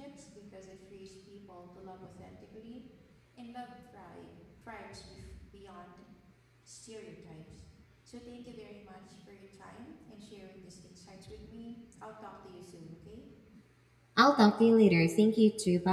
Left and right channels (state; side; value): identical; both; correlation 1.00